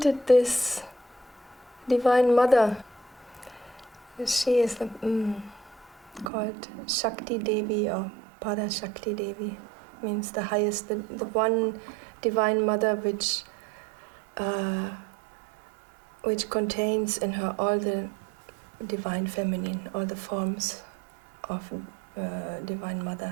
this Divine Mother, she is called SHAKTI Devi or Para SHAKTI Devi, means the highest, the one Divine Mother which contains in her all the Divine Feminine, all the forms of Divine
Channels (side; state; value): left; drops out; at 6.3 s